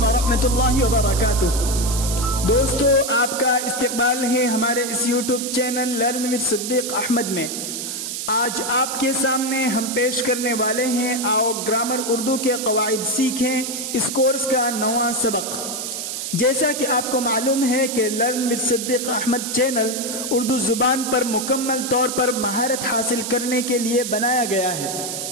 ورحمۃ اللہ وبرکاتہ۔ دوستو، آپ کا استقبال ہے ہمارے اس YouTube channel learn with Siddiq Ahmad میں۔ آج آپ کے سامنے ہم پیش کرنے والے ہیں آؤ گرامر اردو کے قواعد سیکھیں، اس کورس کا نواں سبق۔ جیسا کہ آپ کو معلوم ہے کہ learn with Siddiq Ahmed channel Urdu زبان پر مکمل طور پر مہارت حاصل کرنے کے لیے بنایا گیا ہے،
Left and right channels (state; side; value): noise; right; hiss, 5 dB below the sound